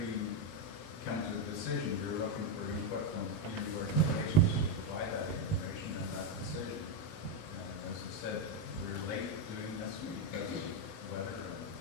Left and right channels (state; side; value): late; right; 19 ms